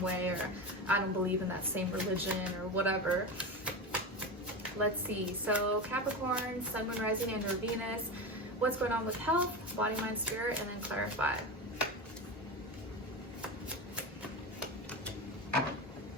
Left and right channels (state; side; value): normal; both; correlation 0.22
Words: way, or I don't believe in that same religion, or whatever. Let's see. So Capricorn, Sun, Moon, Rising, and or Venus. What's going on with health, body, mind, spirit, and then clarify.